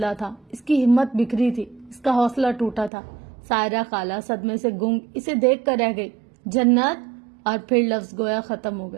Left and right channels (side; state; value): left; drops out; at 2.9 s